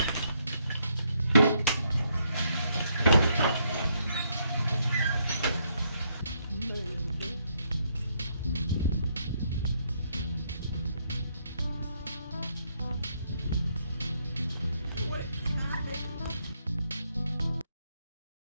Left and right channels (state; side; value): inverted; both; correlation -0.74